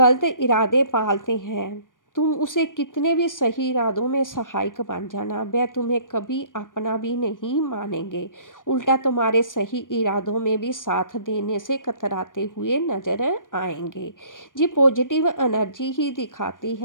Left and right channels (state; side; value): late; right; 0.88 ms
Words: इरादे पालते हैं, तुम उसे कितने भी सही इरादों में सहायक बन जाना, वह तुम्हें कभी अपना भी नहीं मानेंगे, उल्टा तुम्हारे सही इरादों में भी साथ देने से कतराते हुए नजर आएंगे। ये पॉजिटिव एनर्जी ही दिखाती